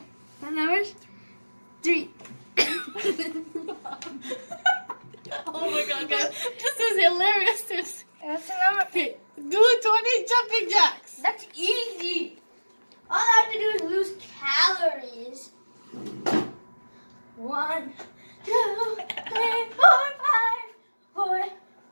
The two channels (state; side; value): inverted; both; correlation -1.00